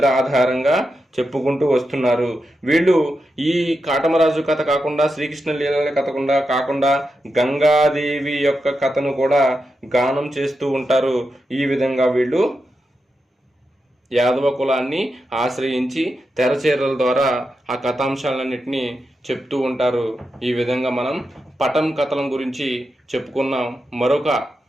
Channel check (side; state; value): both; normal; correlation 0.88